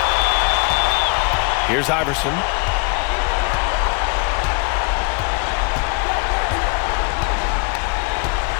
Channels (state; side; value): quieter; right; 32.9 dB